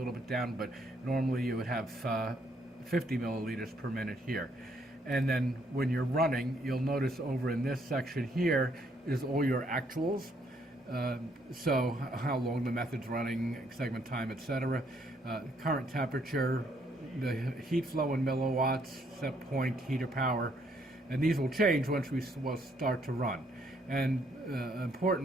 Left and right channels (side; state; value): both; normal; correlation 0.70